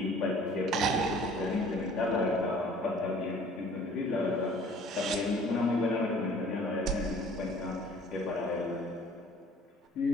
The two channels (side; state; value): both; normal; correlation 0.52